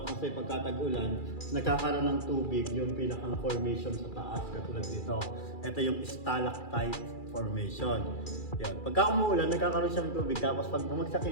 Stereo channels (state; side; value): late; right; 2.4 ms